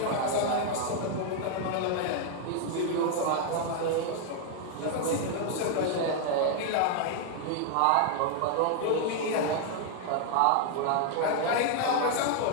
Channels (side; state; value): both; different; correlation 0.00